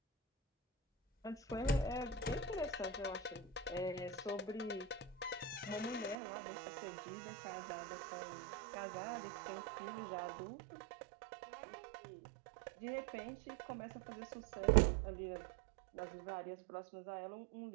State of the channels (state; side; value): drops out; left; at 6.2 s